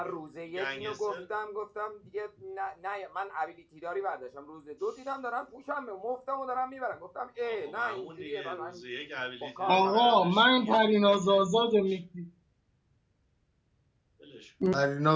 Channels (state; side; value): identical; both; correlation 1.00